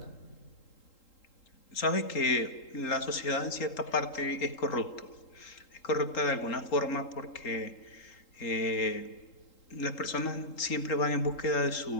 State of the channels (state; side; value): late; right; 3.8 ms